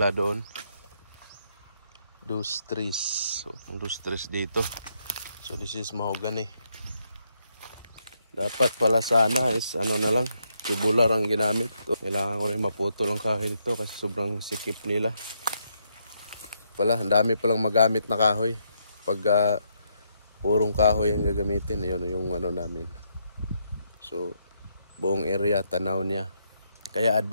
doon. Dos trees. So ang dos trees dito. So this is mahogany. Dapat pala sana is ano na lang, tubular ang ginamit. Kailangan ko rin maputol ang kahoy dito kasi sobrang sikip nila. Pala, ang dami palang magamit na kahoy. Pag purong kahoy ang gagamitin, yun yung ano namin. So buong area tanaw niya. Kaya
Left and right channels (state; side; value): inverted; both; correlation -0.76